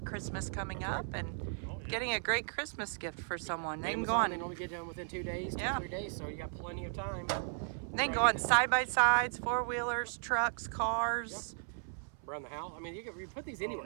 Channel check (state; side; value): silent; left; 54 dB below the other